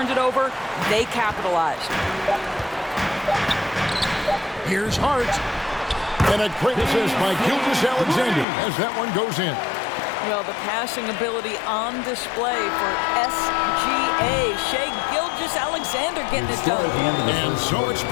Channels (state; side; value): drops out; right; at 8.5 s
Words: it over, they capitalized. Here's Hart. And a great assist by Gilgeous-Alexander as that one goes in. Well, the passing ability on display for SGA. Shai Gilgeous-Alexander getting it done. And so it's